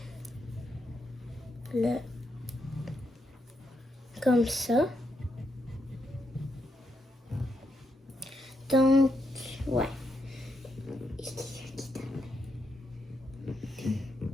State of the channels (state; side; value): normal; both; correlation 0.81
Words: le... comme ça. Donc, ouais.